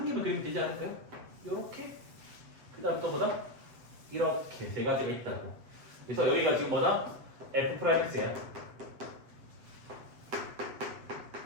개만 그리면 되지 않을까요? 요렇게 그 다음 또 뭐다? 이렇게 세 가지가 있다고. 그래서 여기가 지금 뭐다? F'X야.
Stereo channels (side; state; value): left; late; 8.1 ms